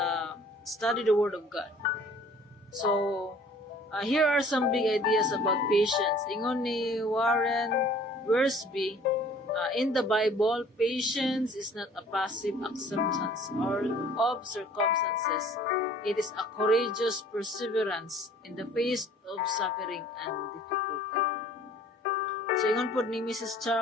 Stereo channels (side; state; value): both; normal; correlation 0.52